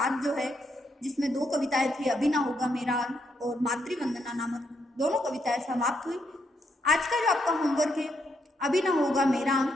जो है, जिसमें 2 कविताएं थी, अभी ना होगा मेरा अंत और मातृवंदना नामक दोनों कविताएं समाप्त हुई। आज का जो आपका होमवर्क है, अभी ना होगा मेरा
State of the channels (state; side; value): normal; both; correlation 0.78